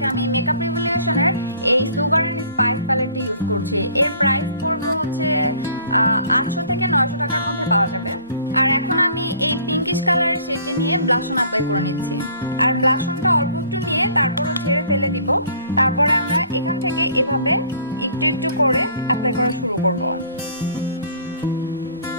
আমি মেকআপ রিভলিউশনের এই সুগার অ্যান্ড স্পাইস প্যালেটটি ইউজ করছি। এর প্রাইস পড়বে হচ্ছে 800 থেকে 900 টাকার মধ্যে পাওয়া যাবে। আর এখন আমি এই পিঙ্কিশ কালারের শেডটি নিয়ে ব্লাশন অ্যাপ্লাই করে নিচ্ছি। আর ব্লাশনটা অল্প একটু নিয়ে তারপরও ঝেড়ে ফেলে দিব। তারপরে আমরা এখান থেকে এভাবে একটু একটু করে অ্যাপ্লাই করা শুরু করব।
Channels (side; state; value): both; inverted; correlation -0.53